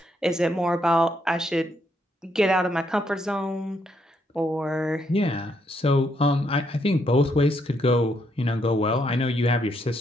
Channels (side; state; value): both; normal; correlation 0.75